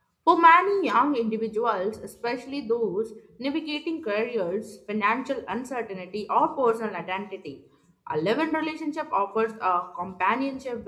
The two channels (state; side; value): identical; both; correlation 1.00